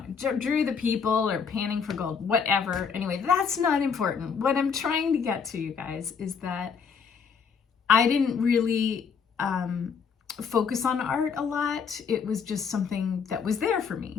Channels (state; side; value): quieter; right; 6.1 dB